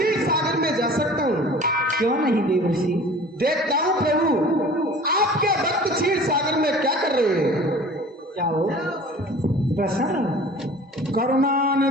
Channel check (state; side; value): normal; both; correlation 0.44